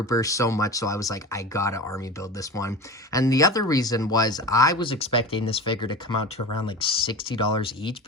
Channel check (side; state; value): both; normal; correlation 0.31